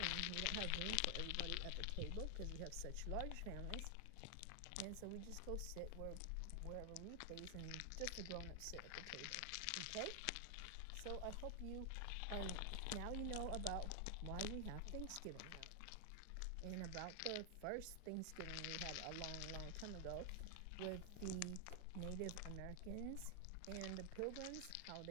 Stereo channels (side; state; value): both; different; correlation 0.00